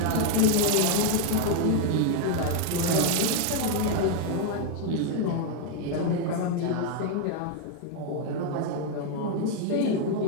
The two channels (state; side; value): different; both; correlation 0.00